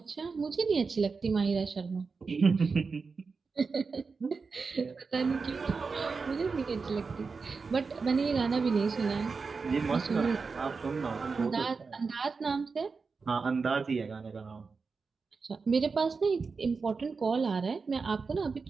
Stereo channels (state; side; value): quieter; left; 4.7 dB